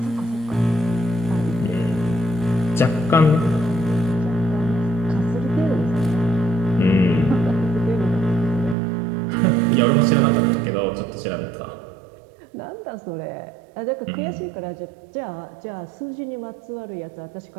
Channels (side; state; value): left; drops out; at 8.8 s